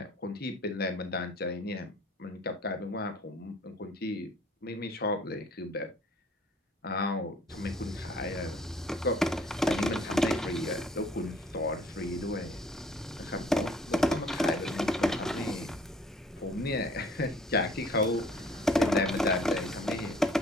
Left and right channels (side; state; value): both; normal; correlation 0.56